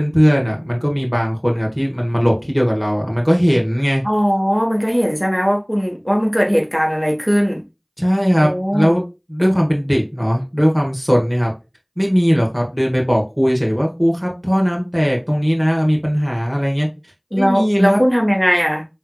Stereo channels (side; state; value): both; identical; correlation 1.00